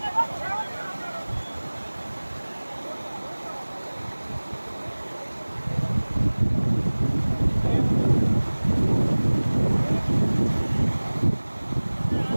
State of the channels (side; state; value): both; inverted; correlation -1.00